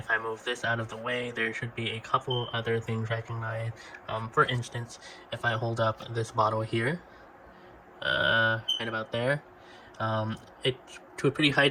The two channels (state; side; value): identical; both; correlation 1.00